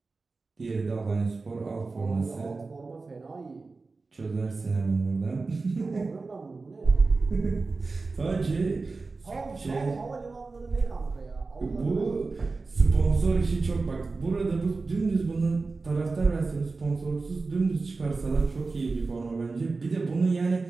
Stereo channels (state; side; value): quieter; left; 3.9 dB